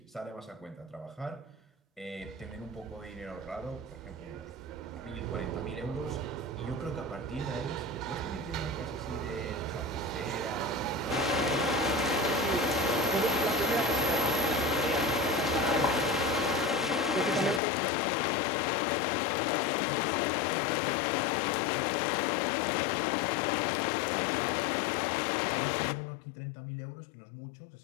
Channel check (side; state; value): right; drops out; at 17.6 s